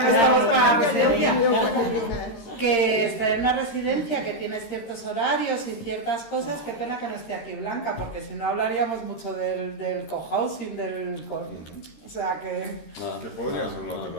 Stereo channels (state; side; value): late; right; 13 ms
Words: no estamos para la residencia. Que estar en una residencia que tienes ciertos horarios y ciertas cosas, qué pena que no esté aquí Blanca, porque si no hablaríamos mucho del cohousing, o sea que... Que podría ser una